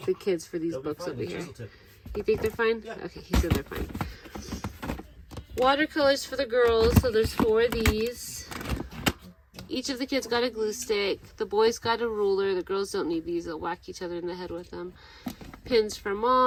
kids for these books over here. You think they're fine? Yeah. Okay, he said they're fine. Watercolors for the girls. So there's 4 of these. Each of the kids got a glue stick. The boys got a ruler. The girls don't need these. They'll whack each other in the head with them. Pins for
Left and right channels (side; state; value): both; identical; correlation 1.00